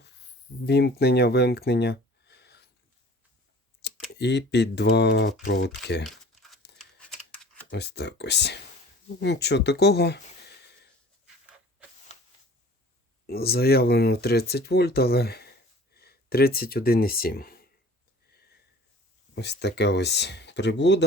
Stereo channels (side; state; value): both; normal; correlation 0.47